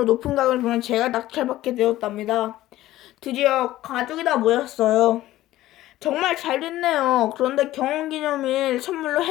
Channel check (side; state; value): right; quieter; 15.3 dB